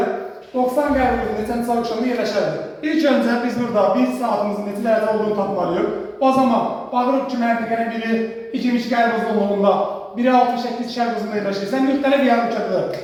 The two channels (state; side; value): identical; both; correlation 1.00